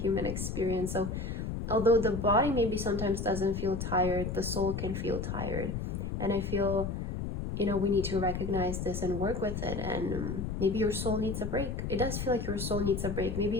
experience. So although the body maybe sometimes doesn't feel tired, the soul can feel tired. And I feel, you know, we need to recognize this and work with it. And maybe your soul needs a break. It does feel like your soul needs a break.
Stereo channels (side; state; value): left; noise; rumble, 4 dB below the sound